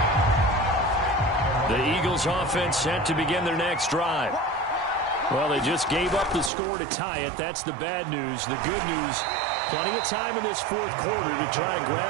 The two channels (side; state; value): left; drops out; at 6.5 s